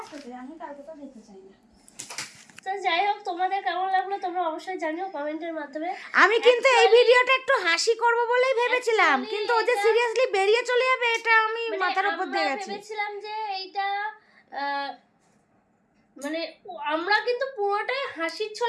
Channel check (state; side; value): identical; both; correlation 1.00